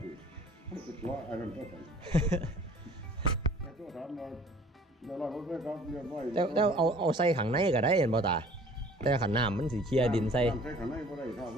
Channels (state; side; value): normal; both; correlation 0.51